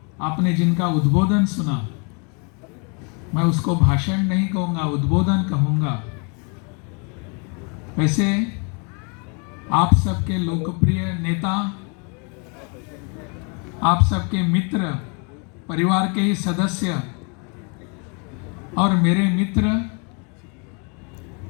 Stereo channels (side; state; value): right; quieter; 35.0 dB